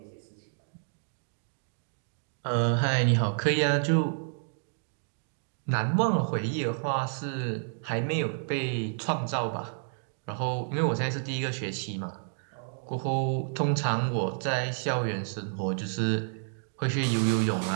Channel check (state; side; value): silent; left; digital silence